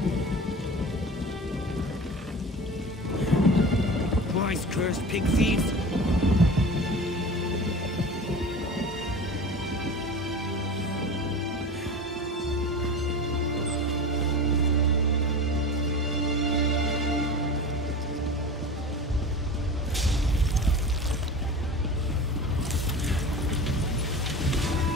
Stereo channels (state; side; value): normal; both; correlation 0.34